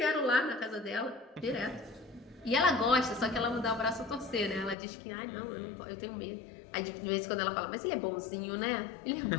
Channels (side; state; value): right; drops out; at 4.8 s